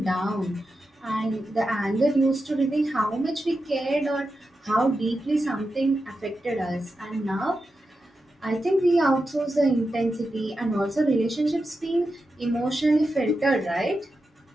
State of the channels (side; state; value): both; normal; correlation 0.89